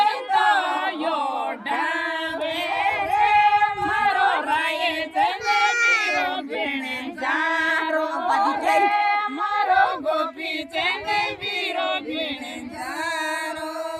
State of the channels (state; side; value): identical; both; correlation 1.00